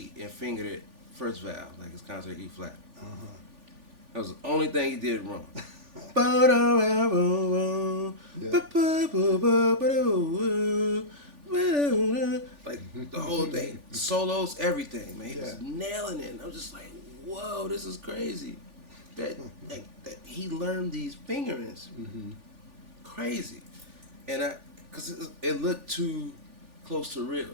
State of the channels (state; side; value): late; left; 3.4 ms